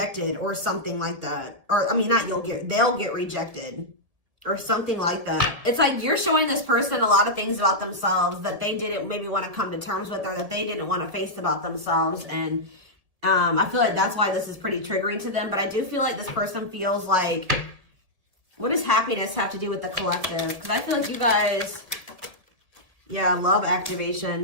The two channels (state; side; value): late; left; 1.7 ms